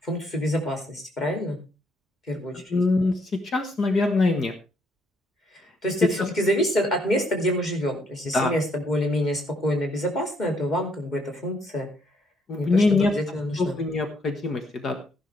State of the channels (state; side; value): normal; both; correlation 0.71